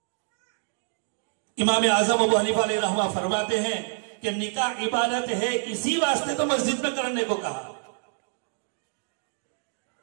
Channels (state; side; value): silent; left; 55 dB below the other